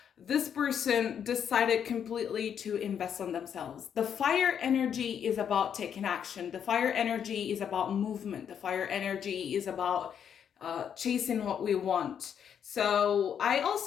this person decided completely to invest on themselves. The fire energy is about taking action. The fire energy is about movement. The fire energy is about chasing what we want. So I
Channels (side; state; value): right; quieter; 8.3 dB